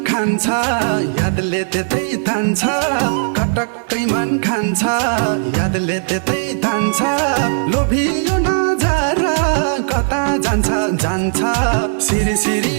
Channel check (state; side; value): silent; left; digital silence